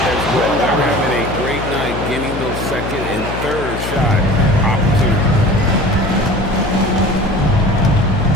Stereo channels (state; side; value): noise; left; hum, 7 dB below the sound